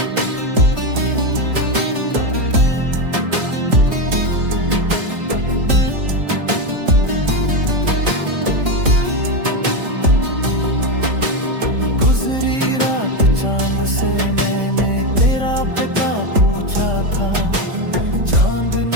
गुजरी रात चांद से मैंने तेरा पता पूछा था, चांद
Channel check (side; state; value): left; late; 3.6 ms